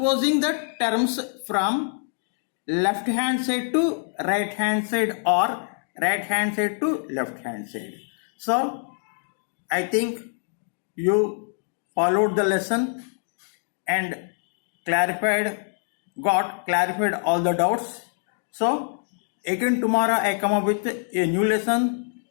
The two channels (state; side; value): silent; right; 62 dB below the other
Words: the terms from left hand side to right hand side or right hand side to left hand side. So I think you followed the lesson and clarified all the doubts. So again tomorrow I come up with a new lesson.